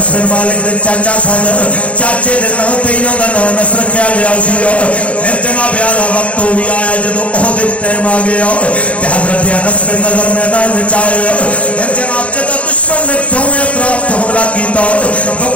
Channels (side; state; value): right; late; 0.065 ms